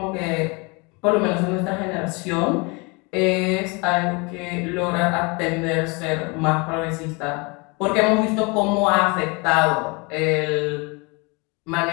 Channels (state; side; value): quieter; right; 29.1 dB